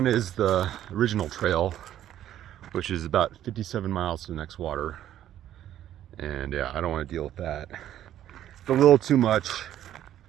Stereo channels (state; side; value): quieter; left; 11.7 dB